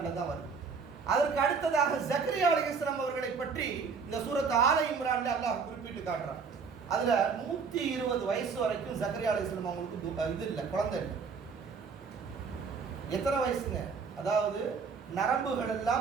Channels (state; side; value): quieter; left; 5.4 dB